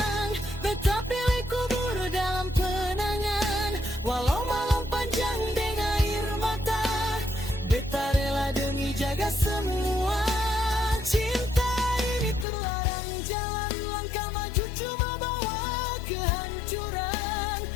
beta pilih kubur dalam kenangan. Walau malam panjang dengan air mata, beta rela demi jaga semua. Cinta ini terlarang jalan, langkah maju cuma bawa kehancuran.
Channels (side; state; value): right; drops out; at 12.5 s